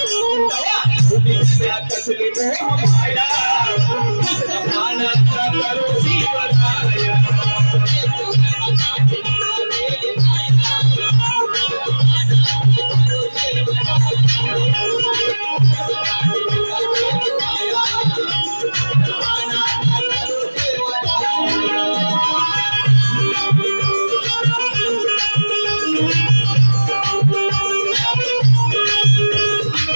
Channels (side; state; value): both; inverted; correlation -1.00